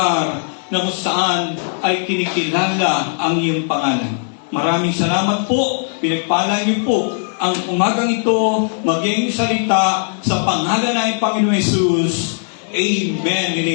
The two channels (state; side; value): silent; right; 67 dB below the other